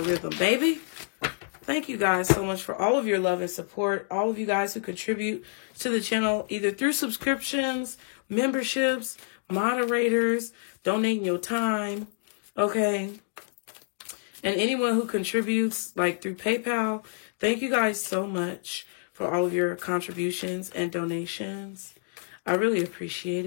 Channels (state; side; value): silent; right; digital silence